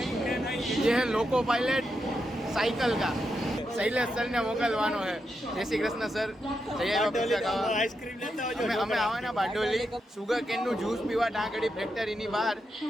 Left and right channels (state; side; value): normal; both; correlation 0.85